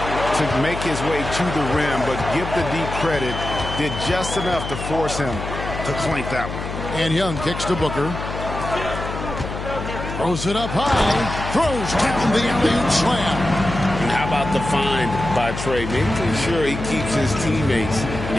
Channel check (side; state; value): left; noise; hum, 7 dB below the sound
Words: to make his way to the rim, but give the deep credit. Did just enough to force him to clink that one. And Young kicks to Booker. Throws it up high. Throws down the alley-oop slam. And how about the find by Trey? Making sure he keeps his teammates